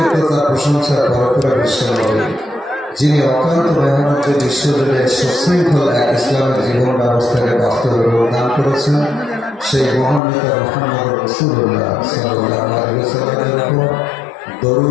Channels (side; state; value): right; drops out; at 10.2 s